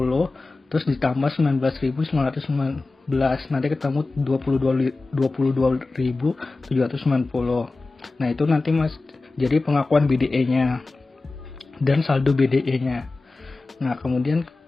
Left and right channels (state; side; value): quieter; right; 3.5 dB